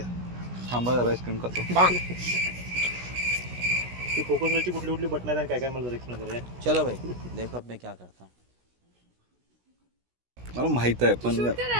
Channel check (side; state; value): left; late; 16 ms